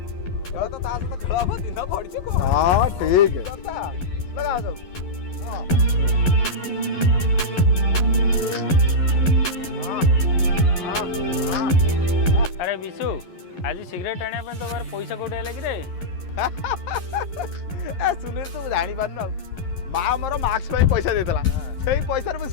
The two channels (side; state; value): right; late; 11 ms